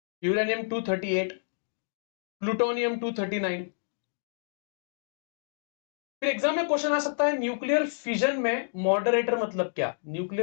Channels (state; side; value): silent; right; digital silence